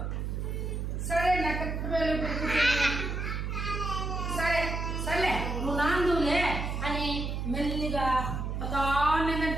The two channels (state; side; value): noise; right; hum, 3 dB below the sound